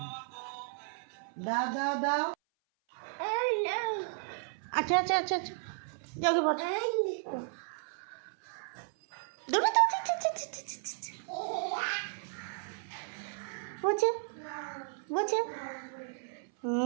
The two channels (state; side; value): silent; left; 55 dB below the other